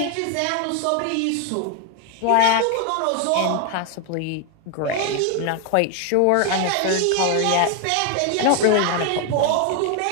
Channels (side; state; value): both; different; correlation 0.01